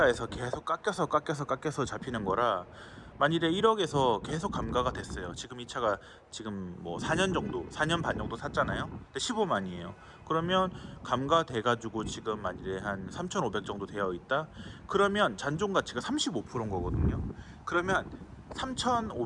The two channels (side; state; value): both; identical; correlation 1.00